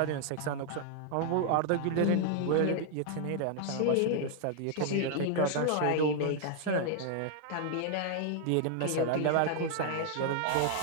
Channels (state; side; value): different; both; correlation 0.00